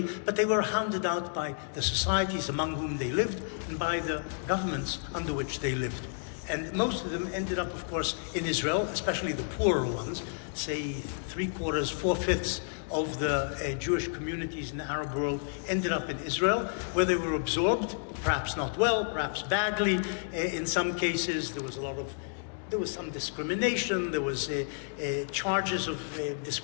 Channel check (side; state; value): right; silent; 57 dB below the other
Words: but they were hounded out by the societies among whom they lived and by the governments under which they lived. And most of them ended up, of course, in Israel, especially the poorer ones, say 3/4, 4/5 of the Jewish communities in the Arab world ended up in Israel, where they were absorbed, perhaps not well, perhaps badly. In some cases, there was some discrimination. There was charges of